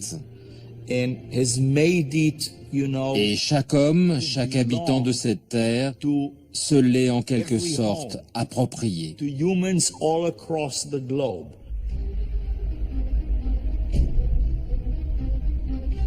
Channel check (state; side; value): identical; both; correlation 1.00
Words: Et chaque homme, chaque habitant de cette terre se l'est en quelque sorte approprié.